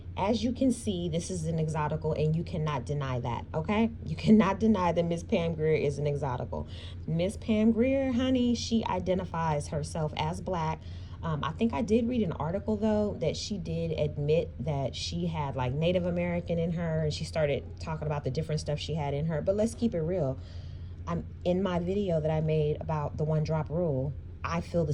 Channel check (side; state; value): both; identical; correlation 1.00